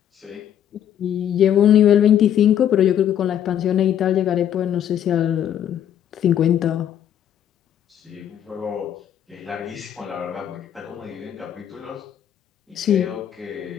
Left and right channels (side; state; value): right; quieter; 10.0 dB